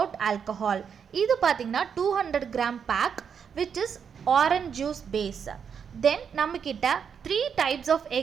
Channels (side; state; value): left; quieter; 7.1 dB